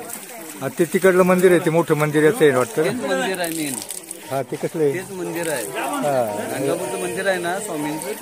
ते तिकडलं मंदिर आहे, ते मोठं मंदिर याचं आहे वाटतं. मंदिर आहे मेन. हा ते कसलं आहे? तेच मंदिर आहे. गाणगापूरचं मंदिर आहे ना स्वामींचं,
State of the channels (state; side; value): identical; both; correlation 1.00